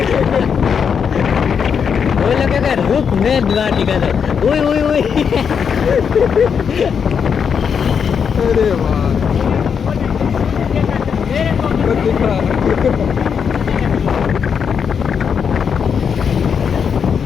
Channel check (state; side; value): quieter; right; 6.9 dB